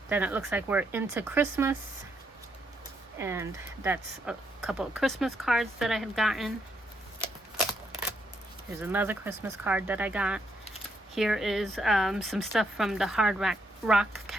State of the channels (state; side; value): normal; both; correlation 0.77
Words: Then it looks like we're into Christmas, and that's a couple of Christmas cards that I had gotten. Here's another Christmas card that I got. Here is some stuff from the Hard Rock